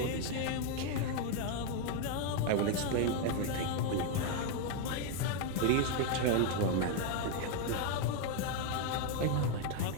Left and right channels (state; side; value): different; both; correlation 0.01